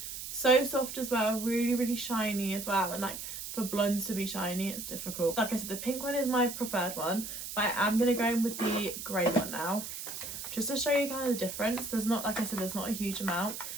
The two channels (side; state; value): right; noise; hiss, 8 dB below the sound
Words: So soft as well, really shiny as well. And like for blondes to be shiny, it's difficult. Like I said, the pink one is my preferred one, but I am going to go in with the grey one now, just to show you kind of the difference. There's not, like I said, there's not a huge amount,